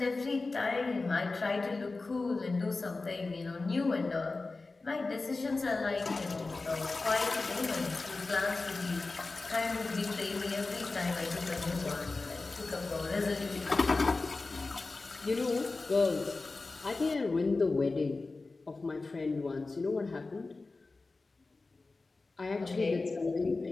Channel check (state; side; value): quieter; right; 3.6 dB